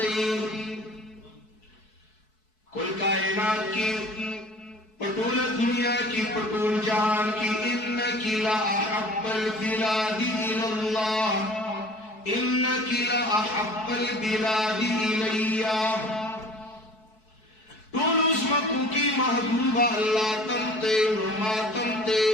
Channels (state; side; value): late; right; 4.6 ms